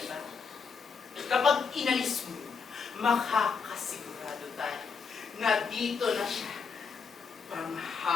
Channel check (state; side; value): quieter; right; 5.7 dB